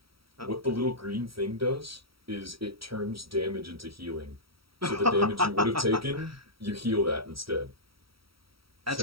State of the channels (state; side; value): late; left; 0.75 ms